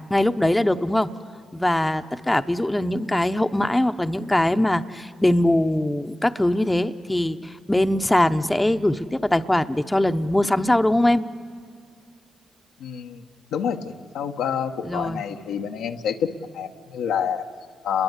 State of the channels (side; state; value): both; normal; correlation 0.95